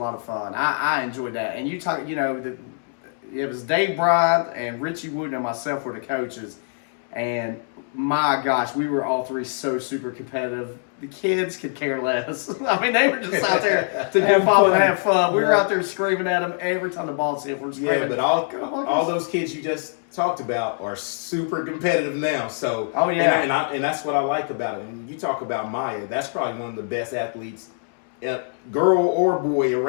of fun. I enjoyed that. And you talk, it was Dave Bryant and Richie Wooten and myself were the coaches. And my gosh, we were all three so super competitive. The kids could care less. I mean, they were just out there to Have have fun and fun. have fun. We were Yeah. out there screaming at them every time the ball's hit. We're screaming. Yeah, but all those kids you just talked about are super competitive now. So Oh, yeah. and that's what I like about it. And you talk about Maya, that's probably one of the best athletes, girl or boy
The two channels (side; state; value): right; silent; 63 dB below the other